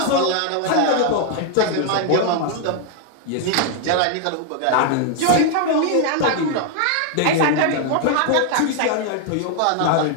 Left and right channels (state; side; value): different; both; correlation 0.00